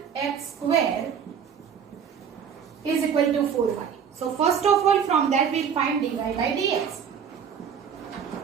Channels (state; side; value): quieter; left; 7.5 dB